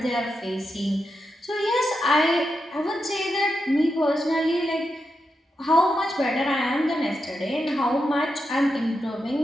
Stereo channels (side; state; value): both; normal; correlation 0.87